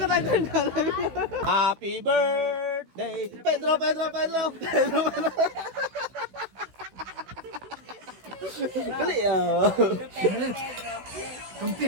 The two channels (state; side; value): late; left; 16 ms